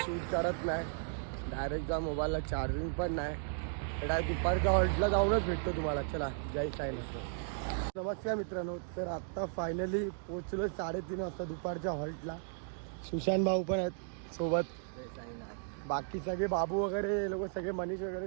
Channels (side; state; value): left; silent; digital silence